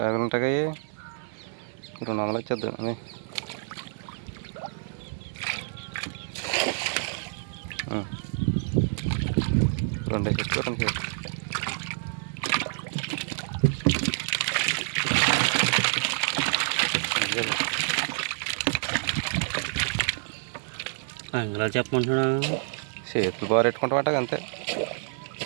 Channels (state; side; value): silent; left; digital silence